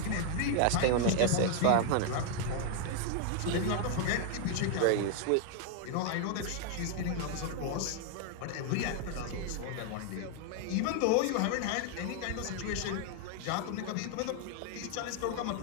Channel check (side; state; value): both; different; correlation 0.00